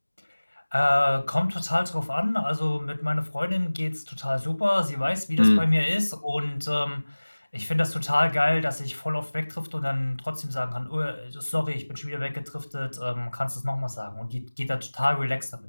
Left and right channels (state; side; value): inverted; both; correlation -1.00